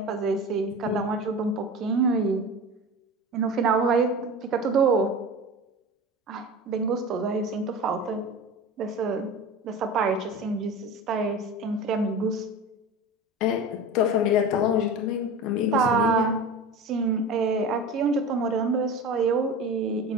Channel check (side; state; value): both; normal; correlation 0.32